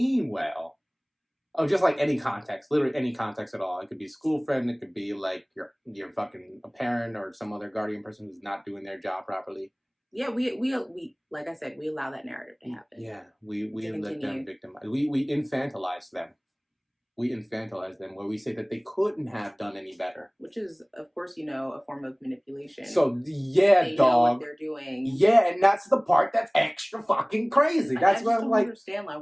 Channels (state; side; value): identical; both; correlation 1.00